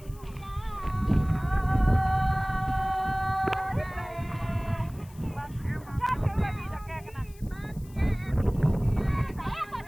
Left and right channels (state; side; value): noise; left; hiss, 25 dB below the sound